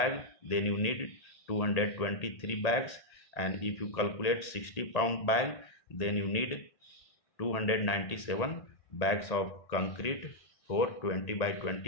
then you need 223 bags, and if you calculate 60-pound bag, then you need 297 bags of concrete for 20 by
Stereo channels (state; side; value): late; right; 1.8 ms